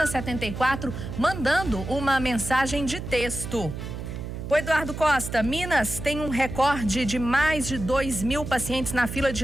mandando uma mensagem de texto. O Eduardo Costa, Minas tem um recorde de mais de 2.000 pacientes na fila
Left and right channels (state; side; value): noise; right; hum, 7 dB below the sound